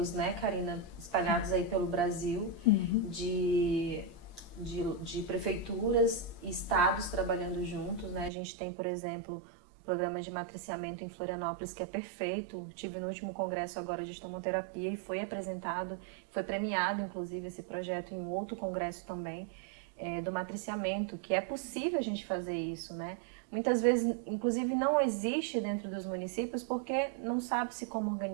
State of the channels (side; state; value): left; drops out; at 8.3 s